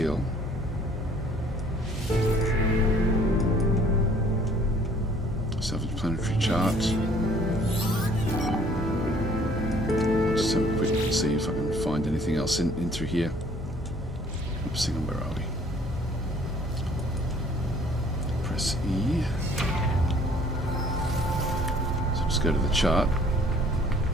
Self-explanatory chart. Just have a quick look and see if I can find anything else in through here. Oops, hang on, where are we? Press E. So just go to the chart.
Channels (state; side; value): normal; both; correlation 0.57